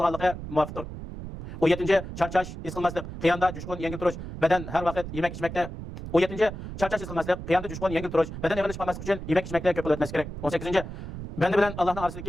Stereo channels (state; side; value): noise; right; rumble, 9 dB below the sound